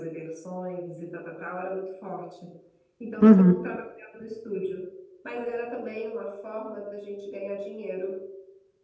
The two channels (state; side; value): identical; both; correlation 1.00